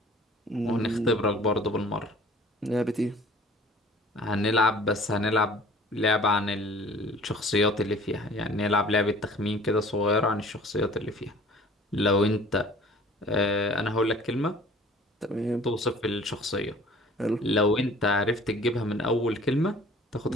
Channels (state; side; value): normal; both; correlation 0.49